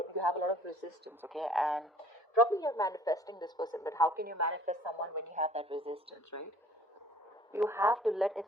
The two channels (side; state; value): both; normal; correlation 0.53